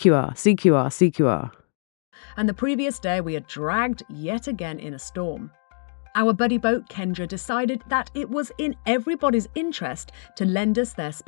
And the previous day we had dragged yet again in a storm. Our buddy boat Kendra decided that it was in everybody's interest to lend us their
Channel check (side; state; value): right; silent; 62 dB below the other